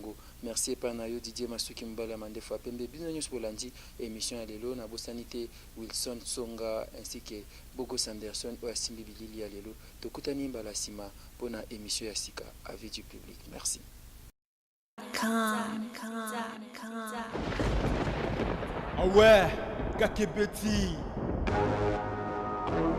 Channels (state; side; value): identical; both; correlation 1.00